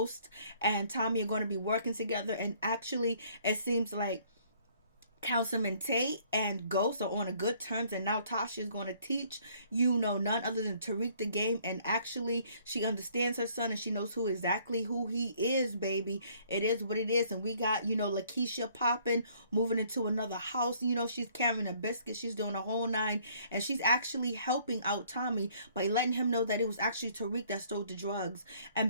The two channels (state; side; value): inverted; both; correlation -0.61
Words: and Tommy are going to be working together, and actually it seems like Councilman Tate and Ghost are on a good terms, and now Tasha is going to teach none other than Tariq the game, and actually she understands her son and she knows exactly who he is, baby. It is what it is. And we got Lakeisha popping, moving into another house. She's carrying a biscuit, she's doing a whole nine, and she's actually helping out Tommy by letting him know that it was actually Tariq that stole the drugs.